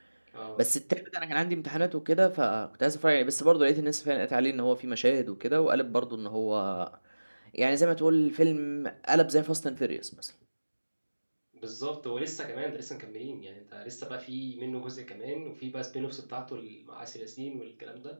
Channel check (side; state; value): both; inverted; correlation -1.00